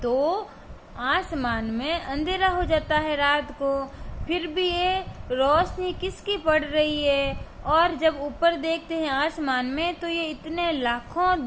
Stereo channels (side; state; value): both; identical; correlation 1.00